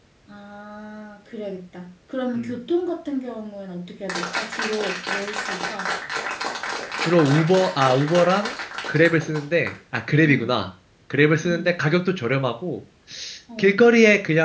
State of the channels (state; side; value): identical; both; correlation 1.00